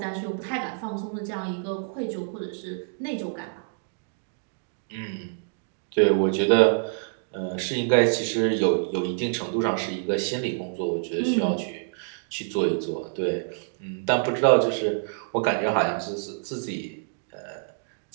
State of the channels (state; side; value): silent; left; digital silence